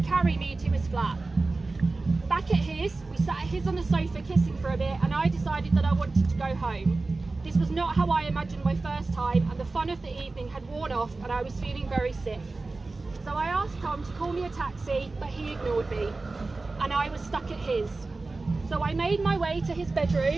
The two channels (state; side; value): quieter; left; 3.5 dB